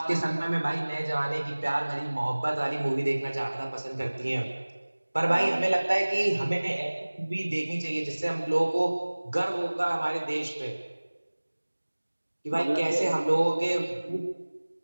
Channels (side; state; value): both; inverted; correlation -1.00